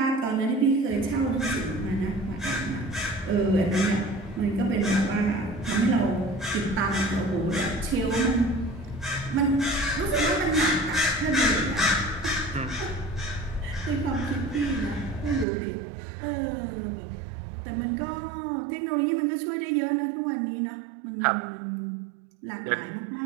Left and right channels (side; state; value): left; drops out; at 15.5 s